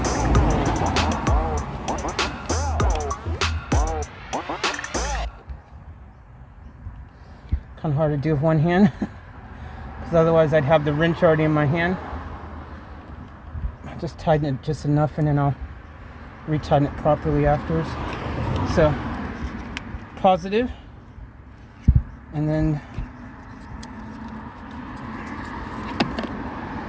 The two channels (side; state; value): both; identical; correlation 1.00